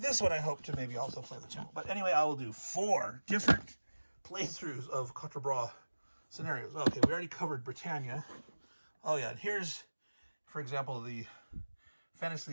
one I hope to maybe also play the channel. But anyway, I will do 4 different playthroughs of Quatre Bras scenarios. Okay, we already covered Britannia. Oh yeah, and here's, for example, the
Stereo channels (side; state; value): both; inverted; correlation -1.00